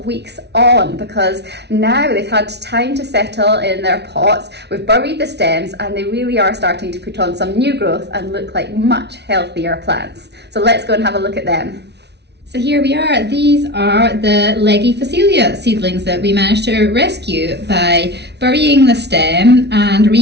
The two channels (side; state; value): left; late; 0.49 ms